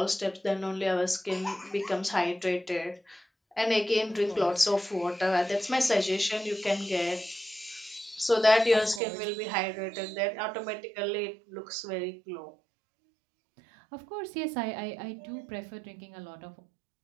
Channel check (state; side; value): drops out; left; at 9.0 s